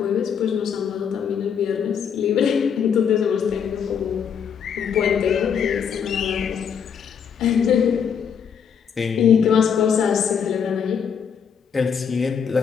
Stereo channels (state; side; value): quieter; right; 7.3 dB